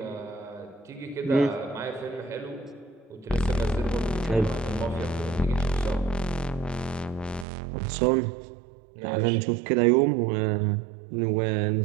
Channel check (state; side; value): drops out; left; at 7.5 s